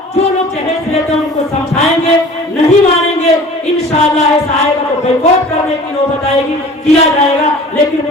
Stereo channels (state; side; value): normal; both; correlation 0.44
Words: जो लोग जहेज लेते हैं उनको समझाएंगे, नहीं मानेंगे इंशाअल्लाह ऐसा आएगा तो बैकआउट करने की नौबत आएगी, किया जाएगा, लेकिन